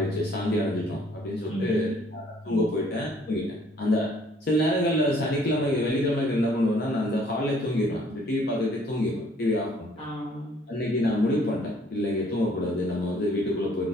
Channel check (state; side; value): normal; both; correlation 0.60